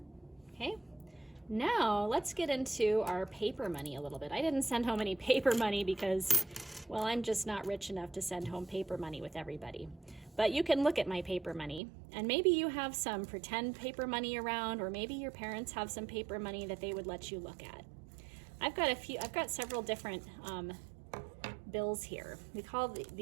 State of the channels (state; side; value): drops out; left; at 11.8 s